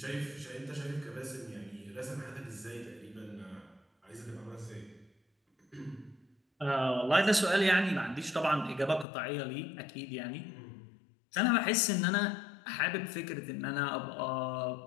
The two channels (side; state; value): right; drops out; at 9.1 s